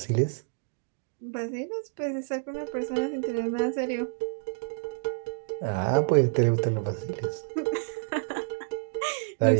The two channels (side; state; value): left; silent; digital silence